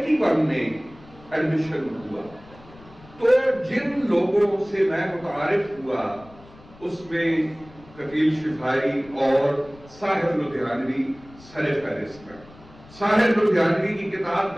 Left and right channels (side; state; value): left; noise; rumble, 23 dB below the sound